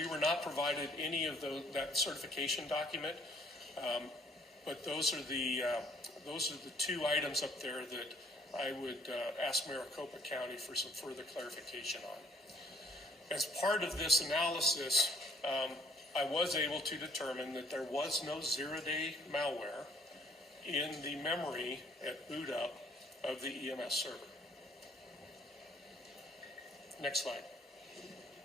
were not provided any of that certification document, but those are the two items up there that I would ask Maricopa County for some further clarification on. As part of this analysis, I was able to determine that there was no zero-day malware in the memory at boot up of the EMS server. Next slide.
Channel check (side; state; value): both; normal; correlation 0.64